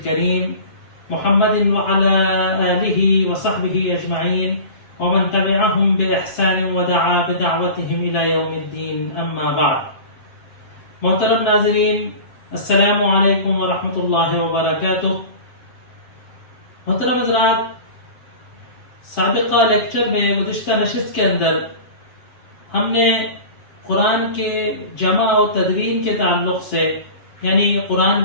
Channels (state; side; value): late; right; 7.6 ms